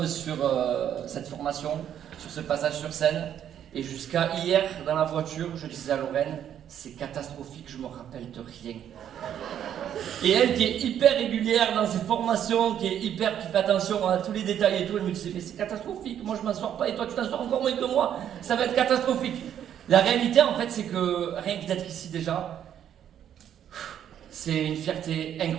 sur cette formation, sur ce passage sur scène. Et jusqu'à hier, dans la voiture, je disais à Lorraine, c'est catastrophique, je me rappelle de rien. Et elle, qui est hyper régulière dans ses formations, qui fait attention à tous les détails et tout, elle me disait, mais c'est catastrophique, moi je m'en sors pas et toi tu t'en sors encore moins que moi, ça va être catastrophique. La réalité en fait, c'est que rien que d'être ici déjà, c'est une fierté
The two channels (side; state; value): left; quieter; 9.8 dB